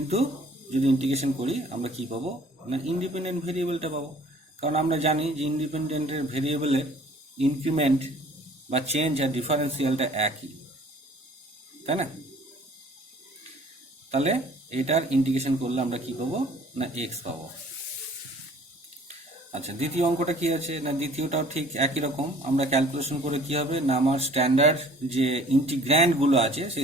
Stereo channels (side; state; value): both; normal; correlation 0.52